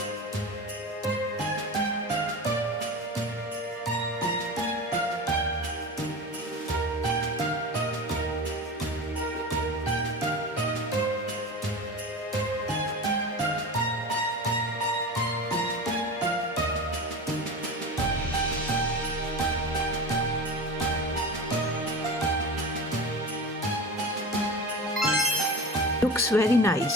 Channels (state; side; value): normal; both; correlation 0.30